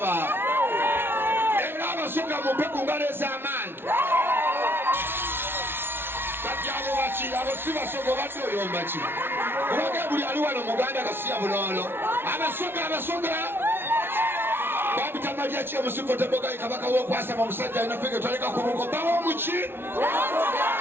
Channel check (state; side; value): late; left; 0.11 ms